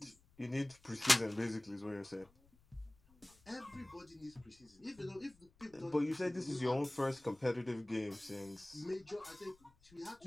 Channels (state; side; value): noise; left; rumble, 29 dB below the sound